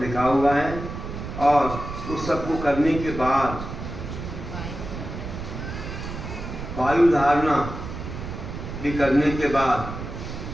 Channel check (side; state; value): right; noise; rumble, 8 dB below the sound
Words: लिखा हुआ है, और उस सब को करने के बाद वायु धारणा भी करने के बाद